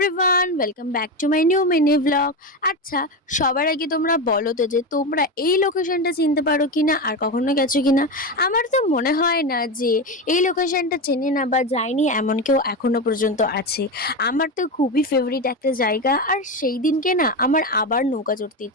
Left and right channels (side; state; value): both; normal; correlation 0.17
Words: welcome back to my new mini vlog. আচ্ছা, সবার আগে তোমরা বলো তো যে তোমরা এই লোকেশনটা চিনতে পারো কিনা আর কখনো গেছো কিনা। আমার তো মনে হয় না যে এই লোকেশনটা চেনে না বা যায়নি এমন কেউ এখনো পর্যন্ত আছে। আমার তো খুবই ফেভারিট একটা জায়গা, আর সেই দিনকে না আমার আবার নৌকা চড়তে